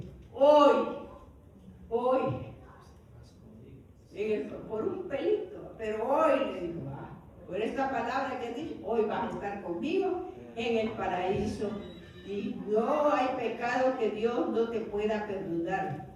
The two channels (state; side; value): identical; both; correlation 1.00